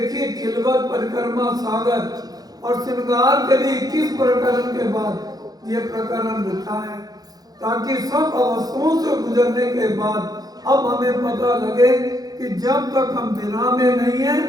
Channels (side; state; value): left; late; 0.19 ms